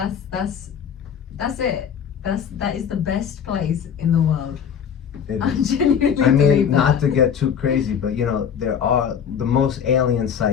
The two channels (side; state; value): right; quieter; 7.8 dB